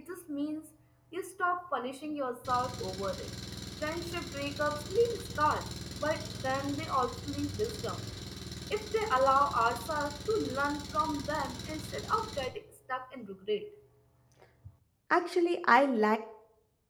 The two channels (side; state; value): both; identical; correlation 1.00